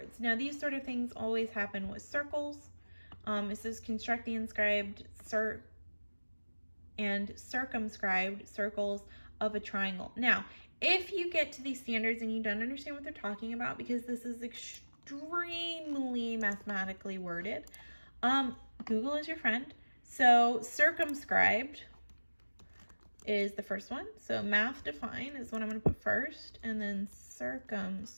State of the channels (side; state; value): both; inverted; correlation -1.00